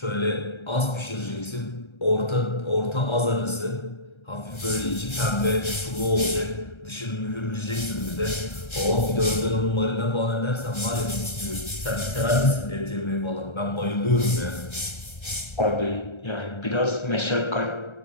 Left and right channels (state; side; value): late; right; 1.3 ms